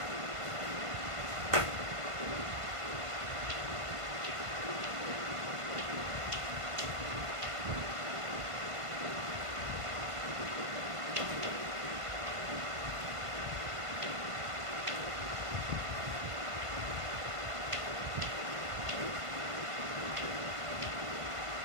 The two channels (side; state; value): left; late; 1.5 ms